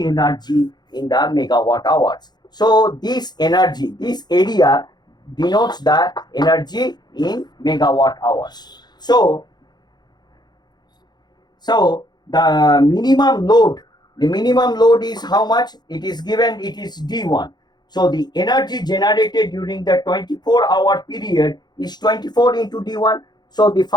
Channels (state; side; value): late; right; 0.20 ms